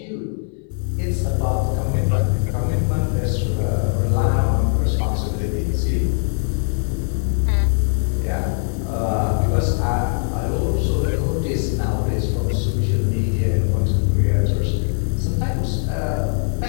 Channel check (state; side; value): silent; right; 65 dB below the other